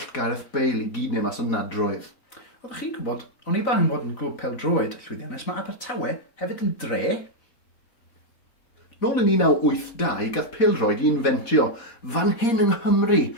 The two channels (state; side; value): late; right; 4.1 ms